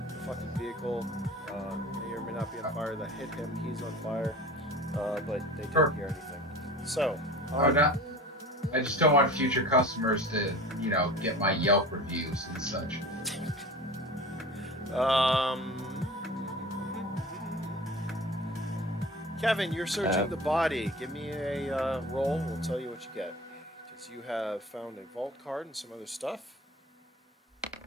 The fucking vehicle may or may not be on fire. That hit him. He's on fire. But they didn't hear anything. So. I just don't want future customers to, you know, get my Yelp reviews and such. Kevin, you're searching the body. Give me a roll. We'll tell you what you get. Because you have found a vault card and some other stuff.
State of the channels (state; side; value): normal; both; correlation 0.37